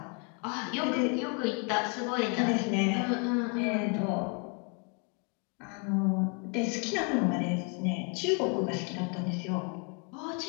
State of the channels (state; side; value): quieter; right; 37.2 dB